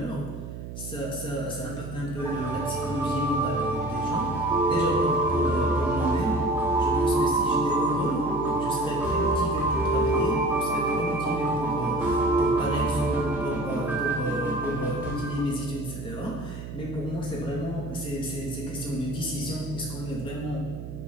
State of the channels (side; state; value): right; noise; hum, 9 dB below the sound